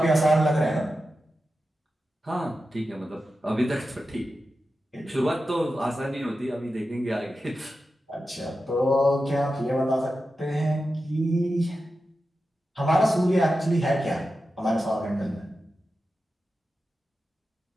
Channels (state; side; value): normal; both; correlation 0.91